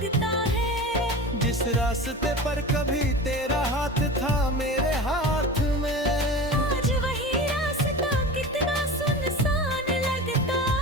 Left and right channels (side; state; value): both; normal; correlation 0.32